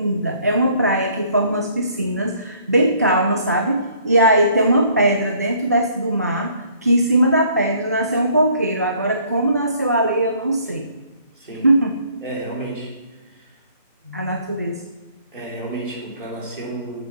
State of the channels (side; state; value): both; inverted; correlation -0.60